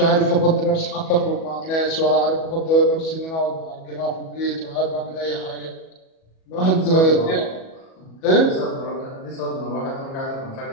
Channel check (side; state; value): right; late; 37 ms